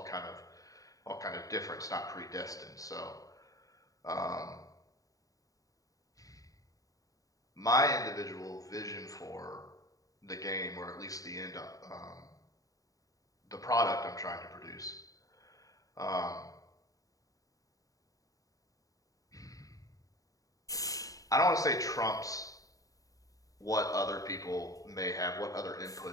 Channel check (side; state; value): right; late; 0.17 ms